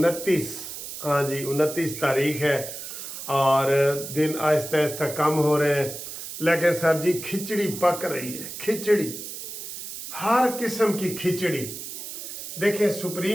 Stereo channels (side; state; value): right; noise; hiss, 9 dB below the sound